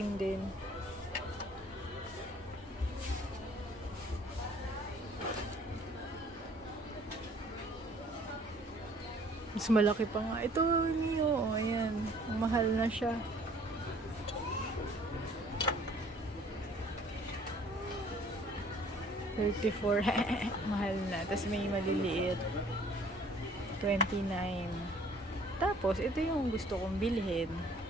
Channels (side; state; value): both; normal; correlation 0.56